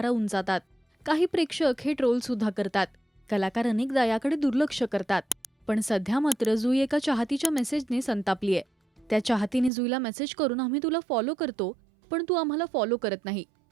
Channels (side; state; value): left; drops out; at 9.7 s